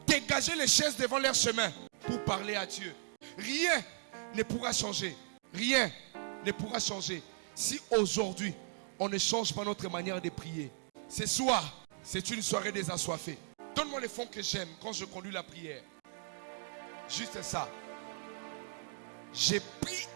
dégager les chaises devant leur chemin pour parler à Dieu. Rien ne pourra changer. Rien ne pourra changer si aujourd'hui on ne change pas notre manière de prier. Ce soir, c'est une soirée des assoiffés. Donne-moi les fonds que j'aime quand je conduis la prière. Juste ça. J'ai pris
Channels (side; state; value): left; silent; digital silence